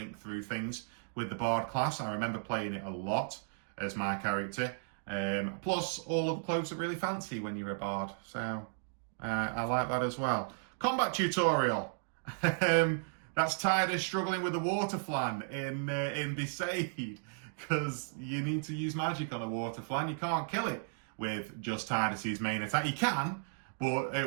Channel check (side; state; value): left; silent; digital silence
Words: through things with the Bard class. I remember playing it a lot as my character. Plus, all of the clothes are really fancy when you're a Bard. So, I like that as well. Combat tutorial. That's Tidus struggling with the water flan in Besaid. Because you need to use magic on a water flan. You can't kill it with just Tidus's main attack. You can, but